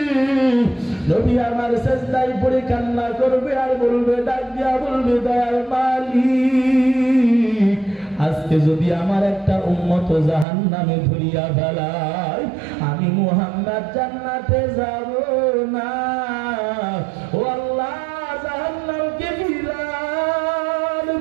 নবী আমার সেজদায় পড়ে কান্না করবে আর বলবে, ডাক দিয়া বলবে, দয়ার মালিক, আজকে যদি আমার একটা উম্মত জাহান্নামে ধরিয়া ফেলায়, আমি মুহাম্মদ জান্নাতে যাব না। ও আল্লাহ, জাহান্নামকে ফিরান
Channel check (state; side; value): drops out; left; at 10.5 s